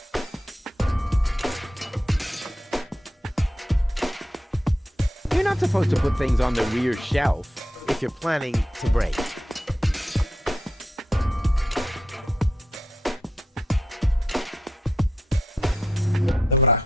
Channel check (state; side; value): normal; both; correlation 0.82